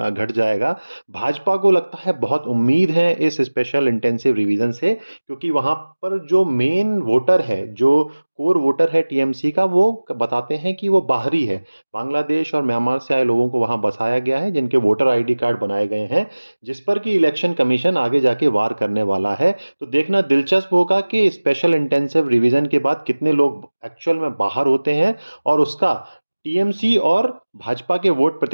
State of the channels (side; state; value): both; inverted; correlation -1.00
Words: घट जाएगा। भाजपा को लगता है बहुत उम्मीद है इस स्पेशल इंटेंसिव रिवीजन से, क्योंकि वहां पर जो मेन वोटर है, जो कोर वोटर है टीएमसी का, वो बताते हैं कि वो बाहरी है। बांग्लादेश और म्यांमार से आए लोगों को वहां बसाया गया है, जिनके वोटर आईडी कार्ड बनाए गए हैं, जिस पर कि इलेक्शन कमीशन आगे जाके वार करने वाला है। तो देखना दिलचस्प होगा कि स्पेशल इंटेंसिव रिवीजन के बाद कितने लोग एक्चुअल में बाहर होते हैं और उसका टीएमसी और भाजपा के वोट